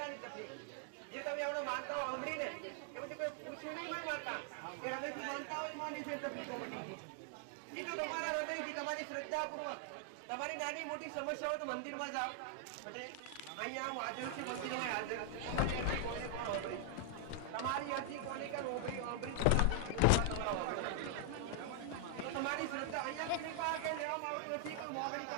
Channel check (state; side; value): different; both; correlation 0.00